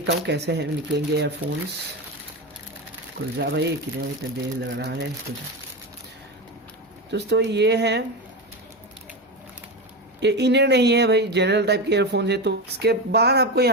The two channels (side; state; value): both; normal; correlation 0.17